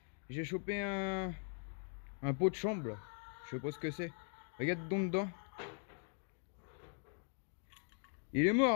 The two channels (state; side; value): silent; right; 51 dB below the other